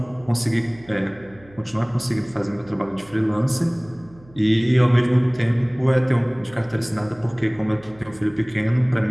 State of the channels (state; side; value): noise; right; hum, 25 dB below the sound